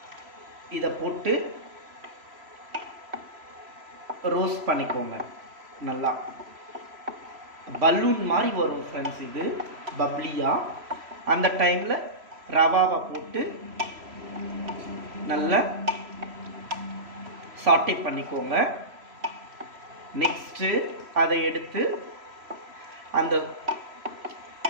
இதை போட்டு ரோஸ்ட் பண்ணிக்கோங்க. நல்லா பலூன் மாதிரி வரும் ஃப்ரெண்ட்ஸ், இது பப்ளியாக. அந்த டைமில் ரவாவை போட்டு நல்லா சாட்டே பண்ணிக்கோங்க. நெக்ஸ்ட்டு அதை எடுத்து அந்த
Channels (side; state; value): left; late; 3.0 ms